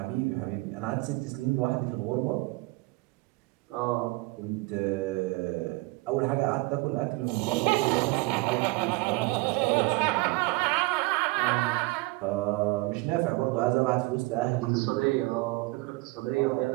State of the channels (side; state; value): left; quieter; 23.3 dB